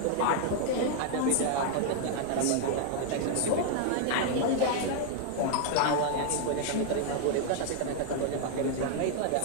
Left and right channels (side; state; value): both; different; correlation 0.00